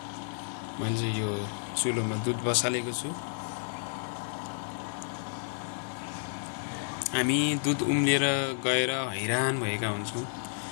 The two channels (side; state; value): right; silent; 57 dB below the other